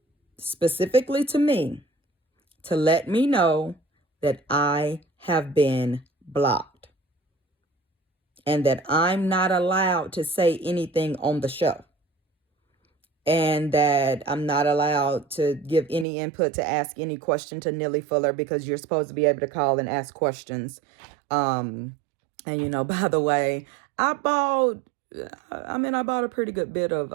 Specifically to me, to let me know that I have been blocked and that I'm not allowed to say anything on the show, and that I'm not allowed to give any input, to ask any question to Neely Fuller, because you're supposed to be able to call and ask questions. And you know, by the way, I bought a pretty good bit of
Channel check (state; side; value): drops out; left; at 16.1 s